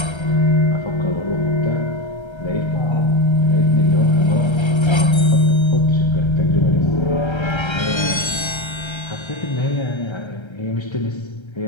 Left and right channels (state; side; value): late; right; 1.3 ms